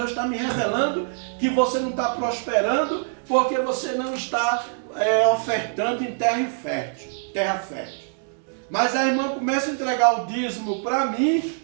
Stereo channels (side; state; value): left; silent; 63 dB below the other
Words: está me revelando que você não está prosperando porque você não está ofertando em terra fértil. Mas a irmã começa a entregar o dízimo para mim,